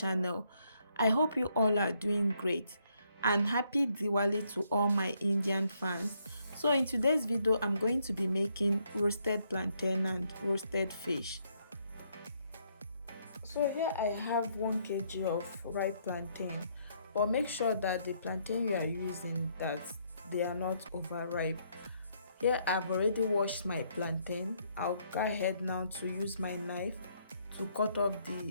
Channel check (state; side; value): inverted; both; correlation -0.72